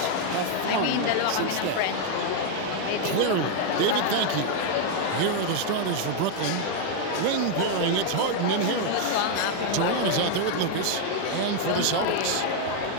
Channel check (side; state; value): both; different; correlation 0.00